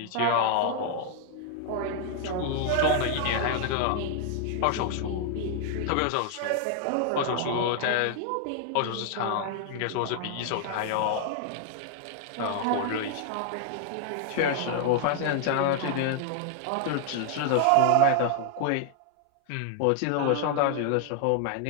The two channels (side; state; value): both; different; correlation 0.00